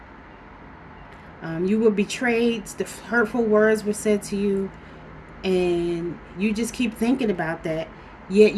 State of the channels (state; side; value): identical; both; correlation 1.00